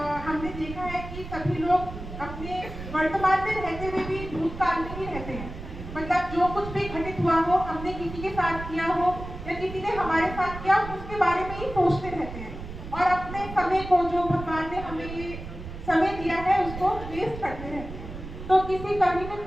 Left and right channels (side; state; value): right; noise; rumble, 11 dB below the sound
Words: हमने देखा है कि सभी लोग अपने वर्तमान में रहते हुए भी भूतकाल में ही रहते हैं। मतलब जो कुछ भी घटित हुआ हो, हमने किसी के साथ किया हो या किसी ने हमारे साथ किया, उसके बारे में ही सोचते रहते हैं और अपने समय को, जो भगवान ने हमें ये समय दिया है, उसको वेस्ट करते रहते हैं। तो किसी कवि ने